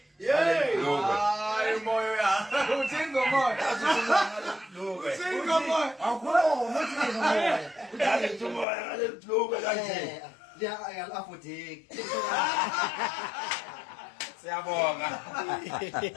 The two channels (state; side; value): drops out; right; at 8.7 s